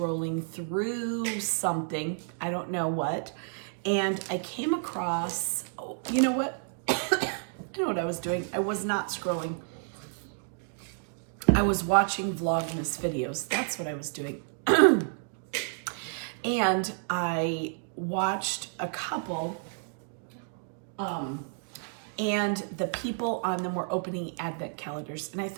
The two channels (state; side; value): silent; left; 57 dB below the other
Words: through something. I don't know what. And I came across, you know what? I know what I was doing. I was not scrolling. I was watching Vlogmas videos. That's what I was doing. And I watched a couple, and the people on them were opening advent calendars. And I